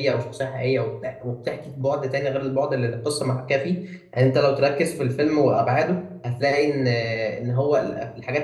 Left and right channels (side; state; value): both; identical; correlation 1.00